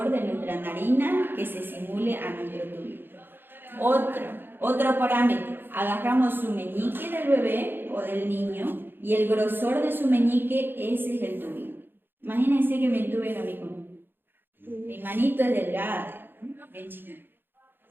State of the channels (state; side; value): late; left; 0.099 ms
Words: de nuestra narina que se simule a nuestro tubo. Otro parámetro, agarramos su meñique del bebé o del niño y el grosor de su meñique, ese es el tubo. Imagínense que me entuben a mí con mi manito es delgada, bien chiquita.